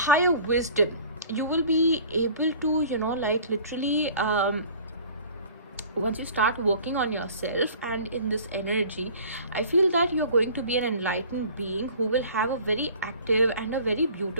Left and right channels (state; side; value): inverted; both; correlation -0.47